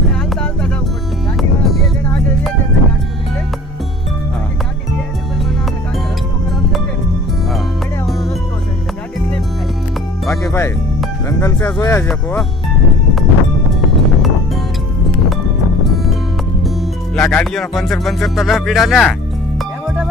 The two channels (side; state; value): both; normal; correlation 0.47